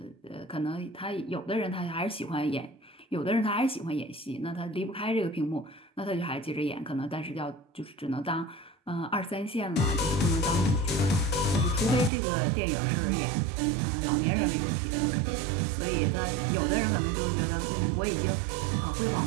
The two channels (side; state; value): left; drops out; at 12.1 s